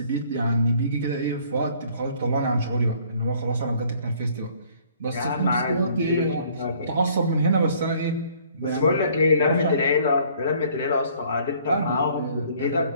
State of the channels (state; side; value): inverted; both; correlation -0.58